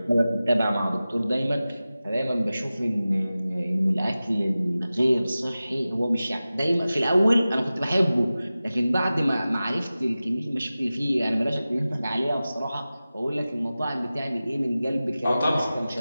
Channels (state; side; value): inverted; both; correlation -0.96